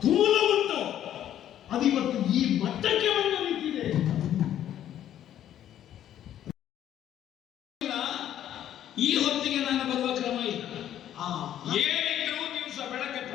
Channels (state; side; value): quieter; right; 11.2 dB